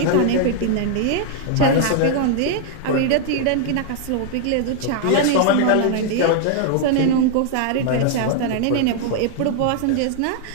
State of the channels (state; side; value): different; both; correlation 0.00